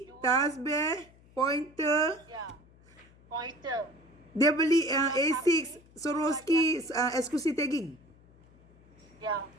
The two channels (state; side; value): noise; left; hum, 27 dB below the sound